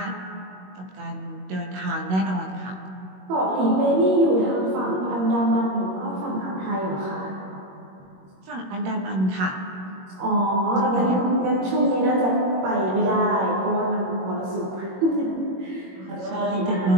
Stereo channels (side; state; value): left; late; 21 ms